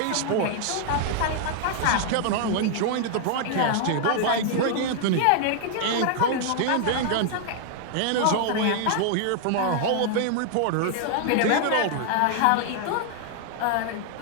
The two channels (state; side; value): different; both; correlation 0.00